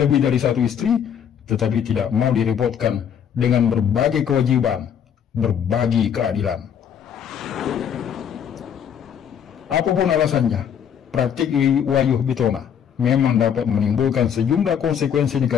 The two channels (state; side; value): quieter; right; 8.4 dB